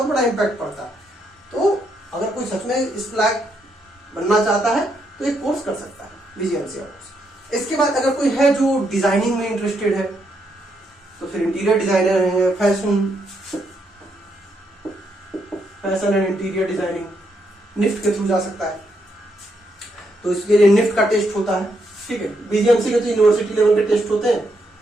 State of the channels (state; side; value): normal; both; correlation 0.78